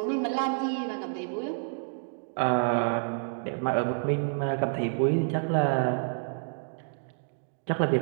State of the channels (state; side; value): silent; left; digital silence